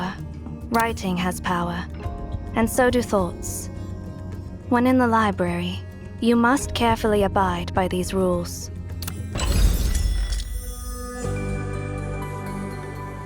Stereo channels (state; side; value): identical; both; correlation 1.00